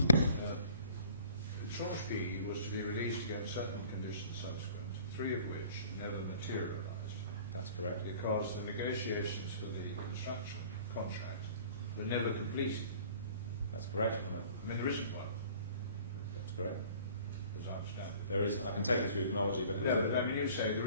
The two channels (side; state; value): both; inverted; correlation -0.50